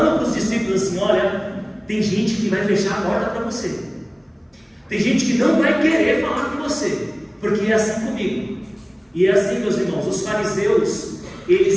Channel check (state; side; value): identical; both; correlation 1.00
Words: para os discípulos assim: olha, tem gente que vai fechar a porta para você. Tem gente que não vai querer falar com você, porque é assim comigo. E é assim, meus irmãos, os fariseus,